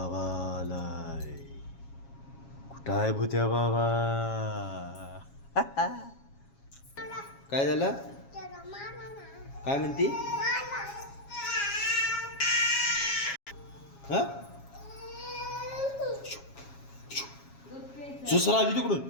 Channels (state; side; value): late; right; 7.3 ms